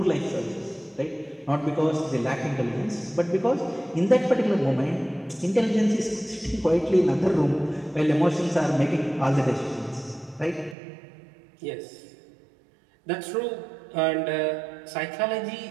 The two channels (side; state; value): left; drops out; at 10.8 s